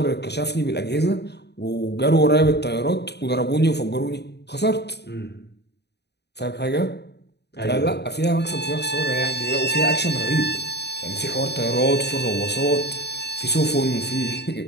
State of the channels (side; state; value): right; late; 0.49 ms